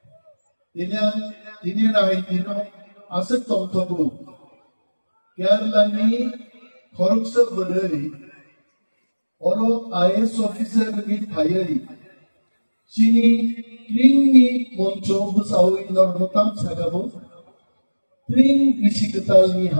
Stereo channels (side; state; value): both; inverted; correlation -1.00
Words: তিনি রাই দিনো আছে তংতকু কেরালানি খরকসা বলই ওর আইএস অফিসার নি থাইয়াই Chini Tringi Moncho Busau in Normotam Sagabo Tring Ishikatalni